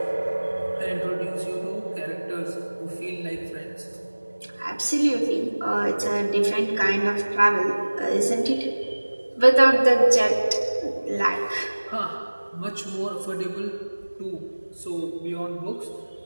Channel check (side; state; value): both; inverted; correlation -1.00